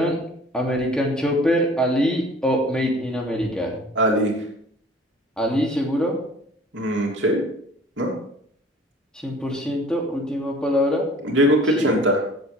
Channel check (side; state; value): both; normal; correlation 0.48